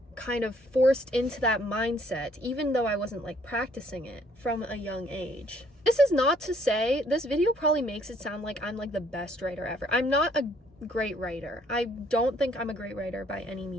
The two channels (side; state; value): both; normal; correlation 0.64